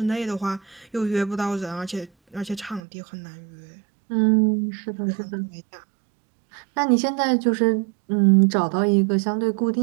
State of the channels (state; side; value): drops out; left; at 2.8 s